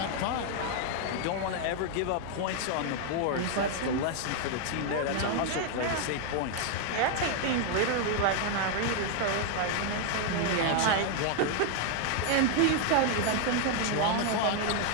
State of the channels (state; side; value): different; both; correlation 0.00